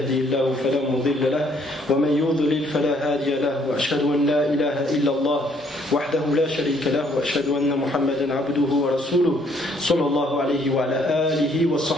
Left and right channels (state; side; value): normal; both; correlation 0.65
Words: الله فلا مضل له ومن يضلل فلا هادي له وأشهد أن لا إله إلا الله وحده لا شريك له وأشهد أن محمدا عبده ورسوله صلى الله عليه وعلى آله